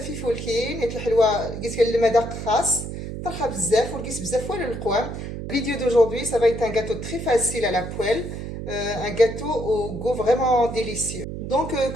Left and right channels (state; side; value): noise; right; hum, 7 dB below the sound